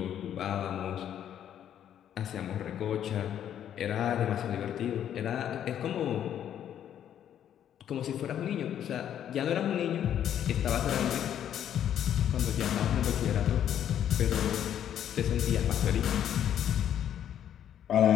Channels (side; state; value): right; quieter; 10.1 dB